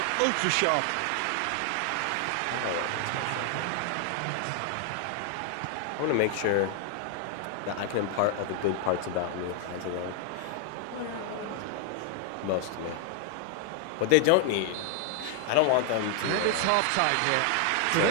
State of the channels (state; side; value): different; both; correlation 0.00